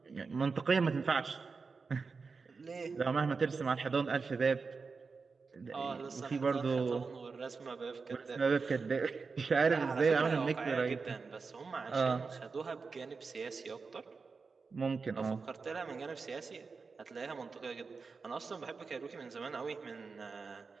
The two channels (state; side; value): quieter; left; 4.7 dB